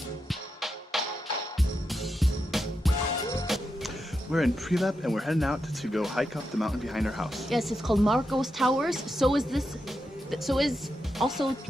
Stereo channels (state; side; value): normal; both; correlation 0.86